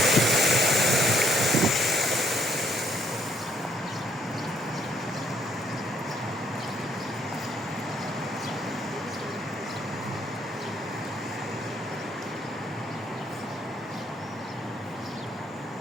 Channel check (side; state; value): both; normal; correlation 0.67